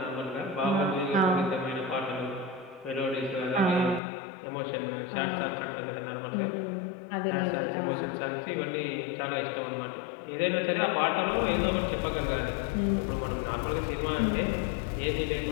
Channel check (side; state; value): right; drops out; at 4.0 s